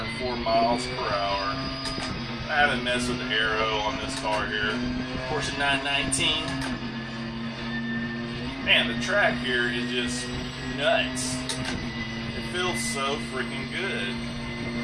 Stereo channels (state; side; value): identical; both; correlation 1.00